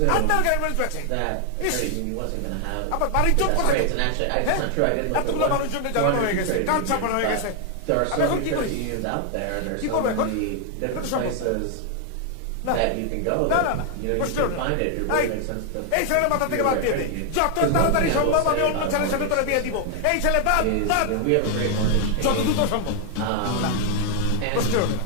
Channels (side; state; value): both; different; correlation 0.00